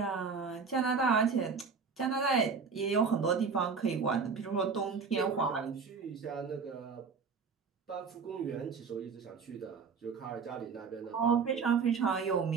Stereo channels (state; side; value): quieter; left; 5.4 dB